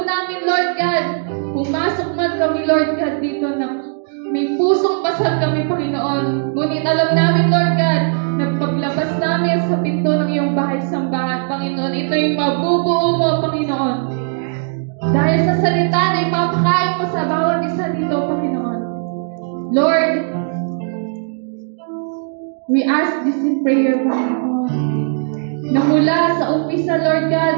namin, Lord God, pumasok man kami, Lord God, dito na may pusong pasal kami, Panginoon. Ngunit alam namin, Lord God, nagpaglabas namin sa pinto ng iyong bahay-sambahan, Panginoon. Ito'y mabubuo mo, Panginoon. Dahil sa salita na ipapakain mo sa bawat isa dito, Panginoon. Lord, we ask this in prayer, Panginoon. Na mula sa umpisa, Lord God,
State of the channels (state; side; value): silent; left; digital silence